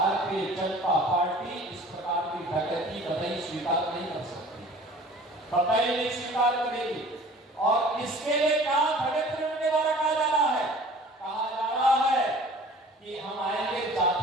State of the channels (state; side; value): normal; both; correlation 0.47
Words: जनता पार्टी इस प्रकार की डकैती कतई स्वीकार नहीं कर सकती, कतई नहीं स्वीकार करेगी। और इसके लिए क्या षड्यंत्र के द्वारा कहा जा रहा है, कहा जा रहा है कि हम आएंगे